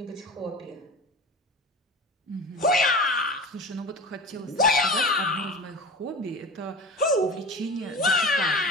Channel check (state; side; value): normal; both; correlation 0.33